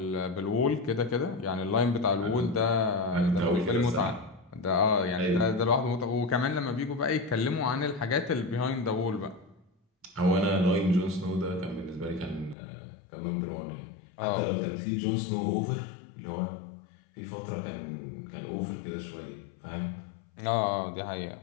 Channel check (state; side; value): drops out; right; at 12.6 s